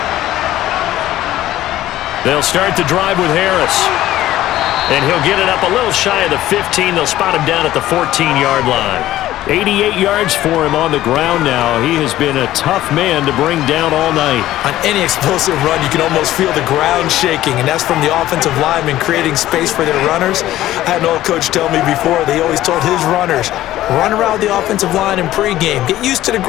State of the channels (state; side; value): quieter; right; 14.4 dB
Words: They'll start the drive with Harris. And he'll get it up a little shy of the 15. They'll spot him down at the 14-yard line. 88 yards for him on the ground now. He has been a tough man to bring down all night. On any explosive run, you can almost feel the ground shaking, and that's from the offensive linemen creating space for their runners. I had an old coach tell me before, they always told his runners, run around the offensive line in pregame. Get used to the